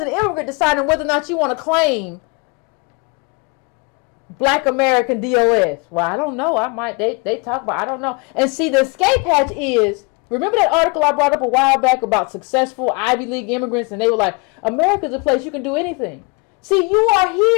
immigrant deciding whether or not you want to claim Black American DOS. Well, I don't know. They talk about, I don't know. And see, the escape hatch is, remember that article I brought up a while back about successful Ivy League immigrants, and they were like, America's a place you can do anything. See, you are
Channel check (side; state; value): right; quieter; 29.5 dB